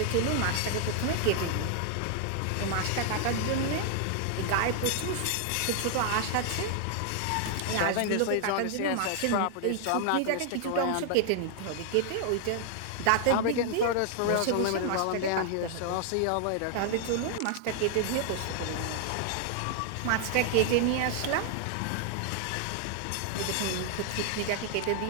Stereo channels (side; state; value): both; different; correlation 0.00